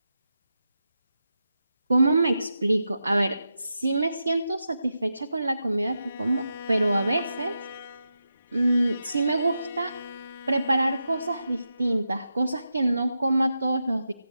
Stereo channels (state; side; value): inverted; both; correlation -0.88